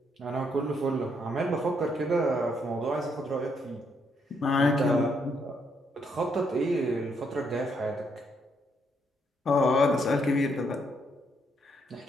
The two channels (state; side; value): normal; both; correlation 0.74